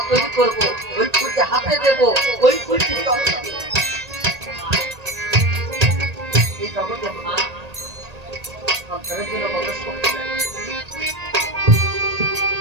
তৈরি করবো, ওই ফুলকে হাতে দেবো, ওই ফুলটি এই জগতে মা সন্তানের জন্য কত শক্তি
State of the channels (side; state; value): left; late; 1.8 ms